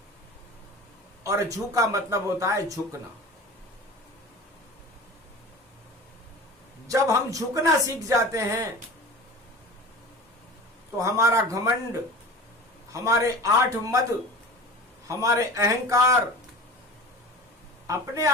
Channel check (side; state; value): both; normal; correlation 0.36